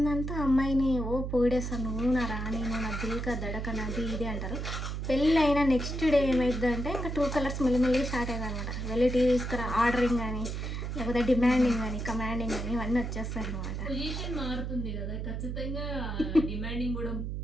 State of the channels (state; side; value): noise; right; hum, 4 dB below the sound